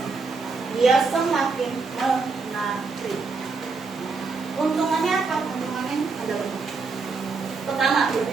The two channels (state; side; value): quieter; left; 4.4 dB